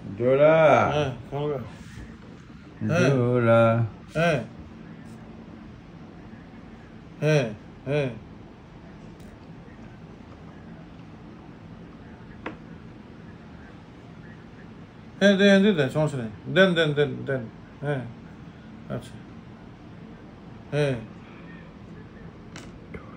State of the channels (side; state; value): both; identical; correlation 1.00